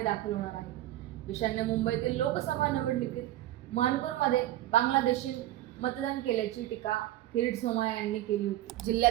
दाखल होणार आहे। ईशान्य मुंबईतील लोकसभा निवडणुकीत मानकोरमध्ये बांगलादेशी मतदान केल्याची टीका किरीट सोमय्या यांनी केली होती।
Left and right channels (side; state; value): left; quieter; 14.3 dB